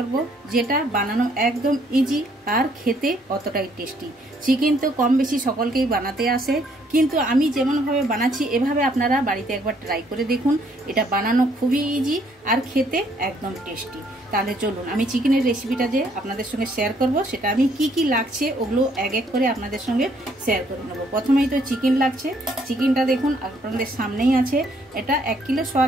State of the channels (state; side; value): normal; both; correlation 0.66